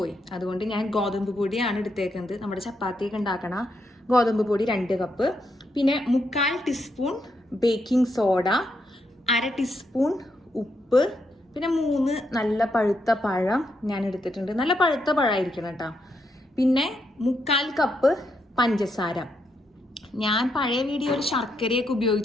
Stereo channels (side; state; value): both; normal; correlation 0.80